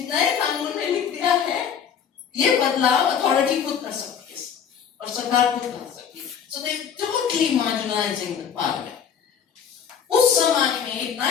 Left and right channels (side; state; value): right; quieter; 7.7 dB